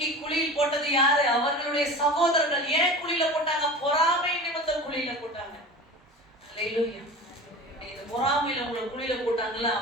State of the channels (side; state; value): both; normal; correlation 0.34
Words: குழியில் போட்டது யாரு? அவர்களுடைய சகோதரர்கள். ஏன் குழியில போட்டாங்க? பொறாமை நிமித்தம் குழியில போட்டாங்க. ஹalleluya. இந்த பொறாமையில உங்களை குழியில போட்டாங்கல்ல,